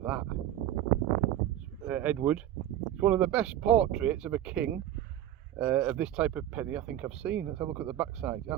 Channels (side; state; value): left; quieter; 12.1 dB